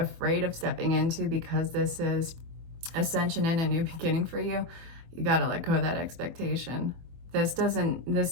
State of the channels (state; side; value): late; left; 24 ms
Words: of stepping into because this is ascension and a new beginning for you, you gotta let go of that expectation. This